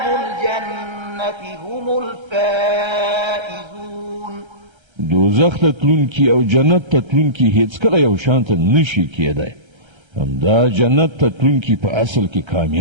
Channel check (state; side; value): late; left; 1.3 ms